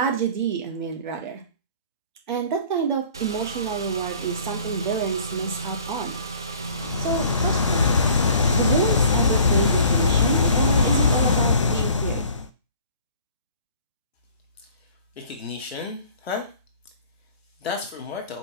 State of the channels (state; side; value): inverted; both; correlation -0.51